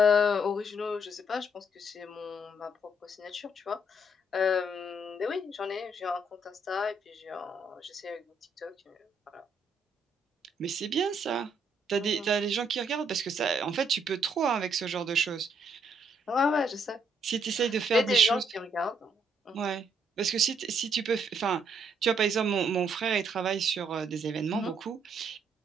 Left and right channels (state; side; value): normal; both; correlation 0.71